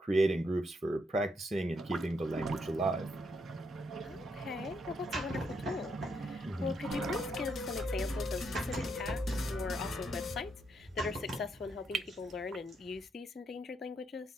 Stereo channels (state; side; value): normal; both; correlation 0.77